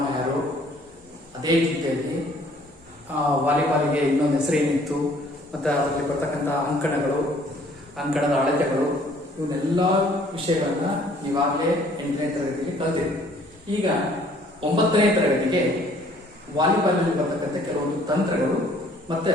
ಯಾರು, ಅದೇ ರೀತಿಯಾಗಿ ವಾಲಿಬಾಲಿಗೆ ಇನ್ನೊಂದು ಹೆಸರೇನಿತ್ತು ಮತ್ತು ಅದರಲ್ಲಿ ಬರ್ತಕ್ಕಂಥ ಅಂಕಣದ ಅಳತೆಗಳು ಇವನ್ನೆಲ್ಲ ವಿಷಯಗಳನ್ನ ಈಗಾಗಲೇ 8ನೇ ತರಗತಿಗೆ ಕಲಿತಿದೆ. ಈಗ 9ನೇ ತರಗತಿಗೆ ವಾಲಿಬಾಲ್ನಲ್ಲಿ ಬರ್ತಕ್ಕಂಥ ಕೆಲವೊಂದು ತಂತ್ರಗಳು ಮತ್ತೆ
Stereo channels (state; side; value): normal; both; correlation 0.58